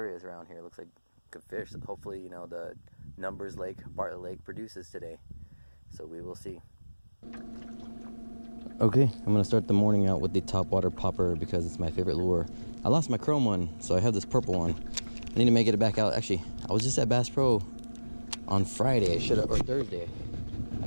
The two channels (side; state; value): both; inverted; correlation -1.00